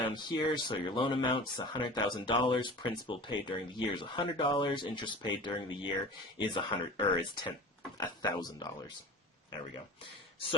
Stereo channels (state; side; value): normal; both; correlation 0.37